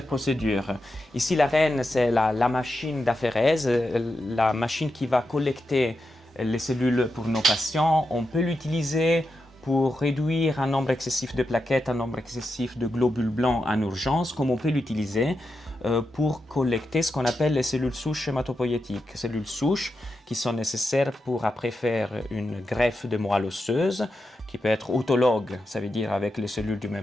procédures. Ici, la reine, c'est la machine d'aphérèse, la machine qui va collecter les cellules pour nos patients. On peut l'utiliser pour réduire un nombre excessif de plaquettes, un nombre excessif de globules blancs en urgence, comme on peut l'utiliser pour collecter ce qu'on appelle les cellules souches hématopoïétiques. Cellules souches qui sont nécessaires pour après faire une greffe de moelle osseuse, qui peut être autologue, ça veut dire avec les cellules du même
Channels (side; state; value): both; normal; correlation 0.88